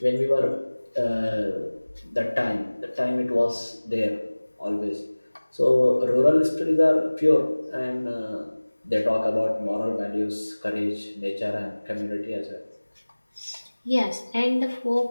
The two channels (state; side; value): inverted; both; correlation -1.00